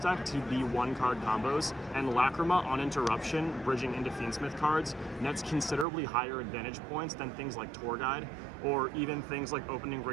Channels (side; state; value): left; drops out; at 5.9 s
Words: to be 1-card combos, and Lacrima on interruption, bridging into Fiend-link cards, nets considerably higher advantage points than things like Tour Guide, or even things like opening